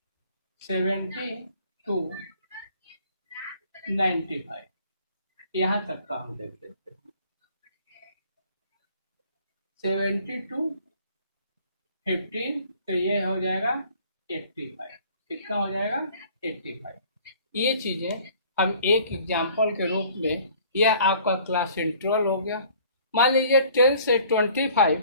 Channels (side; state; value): both; inverted; correlation -0.54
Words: 70 to 95, यहाँ तक का हम देख लेते हैं। 70 to 15 तो ये हो जाएगा 85, कितना हो जाएगा 85। ये चीजें हम एक एग्जाम्पल के रूप में, यह आपका क्लास इंटरवल हो गया। मान लीजिए 10 से 25,